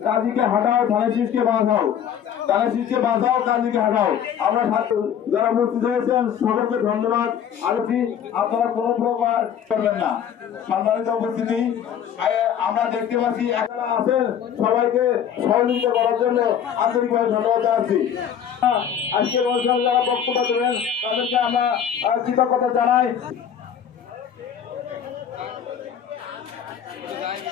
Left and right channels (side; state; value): right; quieter; 8.8 dB